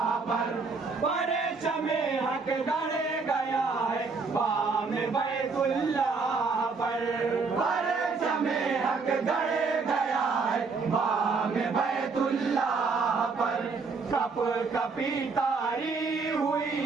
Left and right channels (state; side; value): quieter; left; 4.5 dB